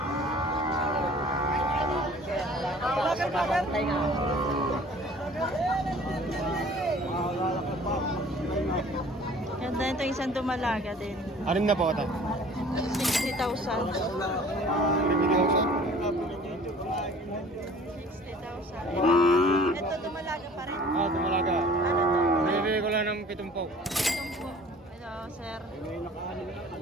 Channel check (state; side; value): normal; both; correlation 0.49